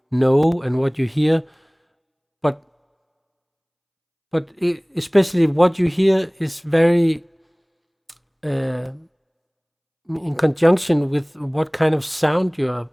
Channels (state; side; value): identical; both; correlation 1.00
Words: know and what you hear, but especially what you hear is very in conjunction with what kind of sound you are